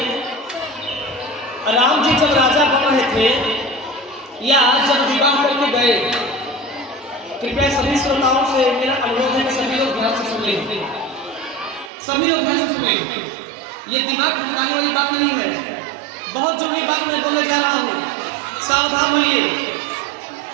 राम जी जब राजा बन रहे थे या जब विवाह करके गए, कृपया सभी श्रोताओं से मेरा अनुरोध है कि सभी लोग ध्यान से सुन लें। सभी लोग ध्यान से सुनें। ये दिमाग भटकाने वाली बात नहीं है, बहुत जरूरी बात मैं बोलने जा रहा हूँ, सावधान होइए।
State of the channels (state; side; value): drops out; left; at 11.9 s